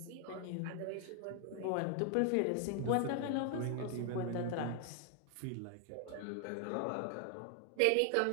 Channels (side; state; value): both; different; correlation 0.00